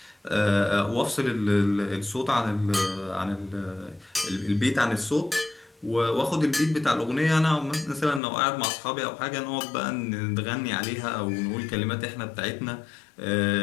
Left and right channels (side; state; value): right; drops out; at 8.2 s